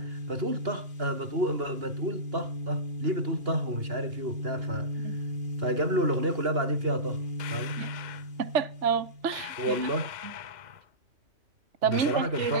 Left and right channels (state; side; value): late; left; 2.8 ms